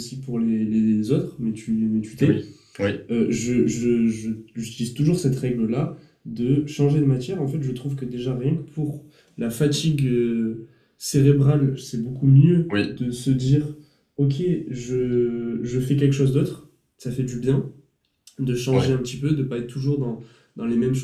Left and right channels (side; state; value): both; identical; correlation 1.00